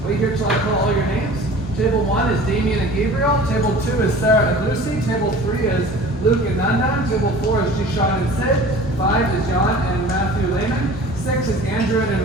Wait here till I call all your names. Table 1 is Damien and Gabriel. Table 2 is Sarah and Lucy. Table 3 is Luke and Nandan. Table 4 is Jishan and Sid. 5 is John and Matthew Lehman. 6 is Andrew and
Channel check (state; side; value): normal; both; correlation 0.43